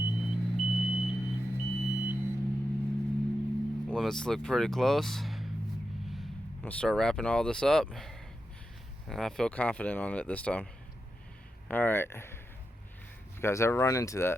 Limits look pretty close. I'm gonna start wrapping all this up, and I feel confident on it this time. Alright, if you guys ever run into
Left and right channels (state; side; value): normal; both; correlation 0.89